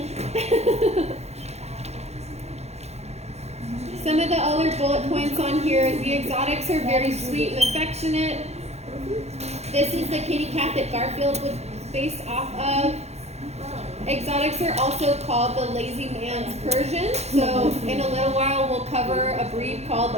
Some of the other bullet points on here is the exotics are very sweet and affectionate. This is the kitty cat that Garfield was based off of. Exotics are also called the lazy man's Persian. So in a little while we'll cover a breed called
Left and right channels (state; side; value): late; left; 0.31 ms